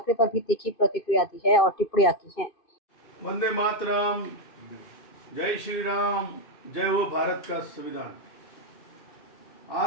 पर भी तीखी प्रतिक्रिया दी है और टिप्पणियां की हैं। वंदे मातरम, जय श्री राम, जय हो भारत का संविधान।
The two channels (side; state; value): right; late; 2.5 ms